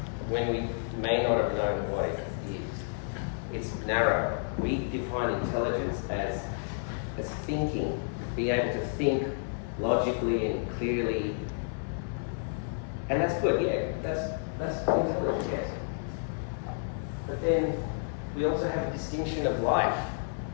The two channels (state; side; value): silent; right; 57 dB below the other